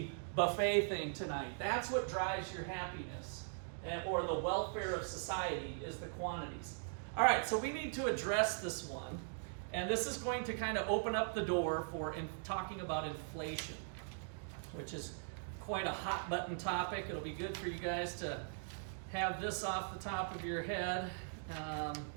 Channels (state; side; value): silent; left; digital silence